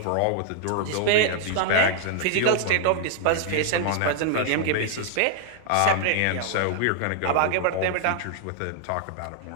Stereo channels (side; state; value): both; different; correlation 0.00